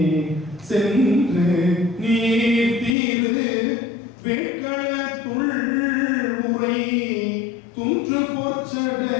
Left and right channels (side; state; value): right; drops out; at 3.0 s